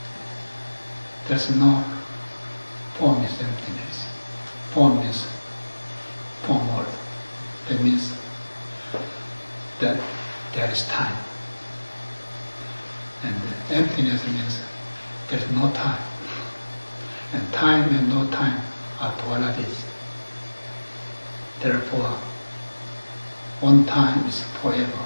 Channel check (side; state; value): both; inverted; correlation -1.00